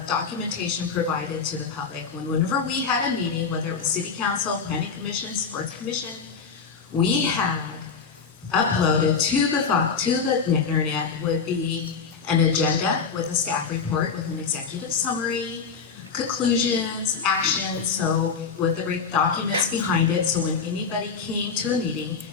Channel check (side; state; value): right; quieter; 5.6 dB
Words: documentation provided to the public. Whenever we had a meeting, whether it was city council, planning commission, sports commission, we had uploaded to the internet would be an agenda with a staff report with an executive summary, conclusions, actions, so with the documents behind it, so when anybody came to a meeting,